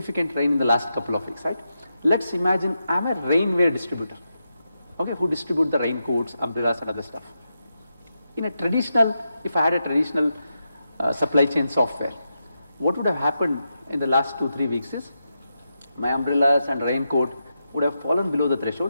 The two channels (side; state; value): both; inverted; correlation -0.87